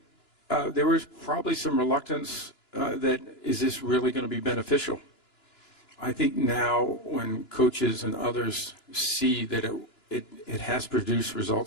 there was probably some reluctance that is this really going to be beneficial? I think now when coaches and others see that it has produced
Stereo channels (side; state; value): right; late; 2.9 ms